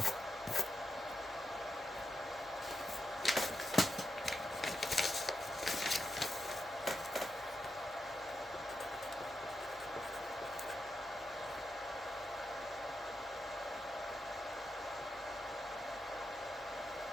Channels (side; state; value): both; normal; correlation 0.86